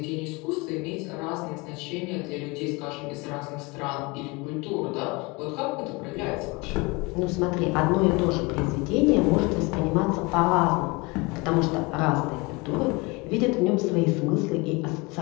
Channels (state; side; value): quieter; right; 26.2 dB